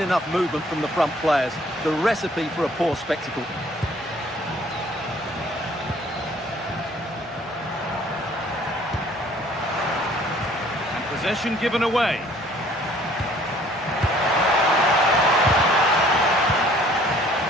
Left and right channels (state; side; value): normal; both; correlation 0.57